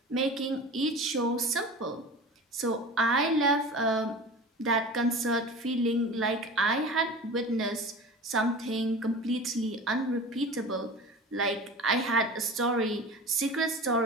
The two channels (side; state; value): both; normal; correlation 0.35